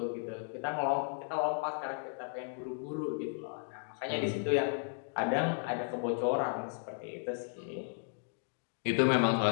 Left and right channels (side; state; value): right; silent; digital silence